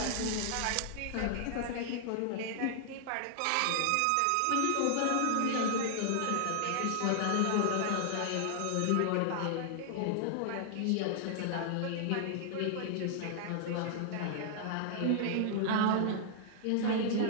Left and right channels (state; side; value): different; both; correlation -0.01